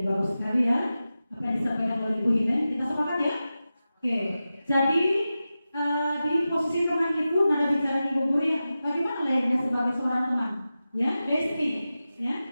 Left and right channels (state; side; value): inverted; both; correlation -0.93